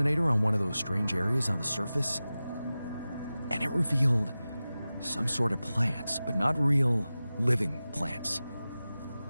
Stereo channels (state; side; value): inverted; both; correlation -0.95